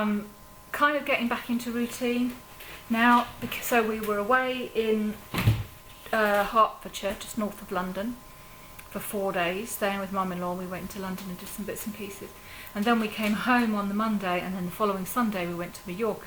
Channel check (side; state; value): both; identical; correlation 1.00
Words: kind of getting back into routine now, because so we were away in Hertfordshire, just north of London, for 4 days, staying with mum-in-law. We went into London and did some bits and pieces, and then we came home on the Monday, and then the following Sunday we went to